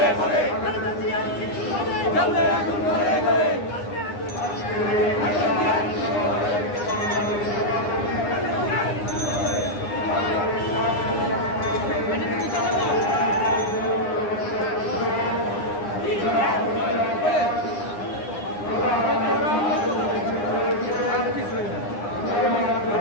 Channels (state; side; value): late; right; 9.7 ms